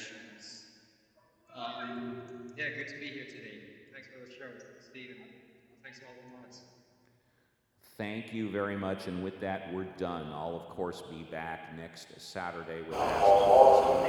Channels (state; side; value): identical; both; correlation 1.00